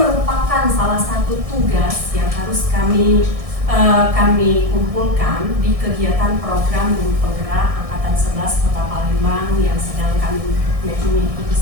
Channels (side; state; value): left; late; 1.6 ms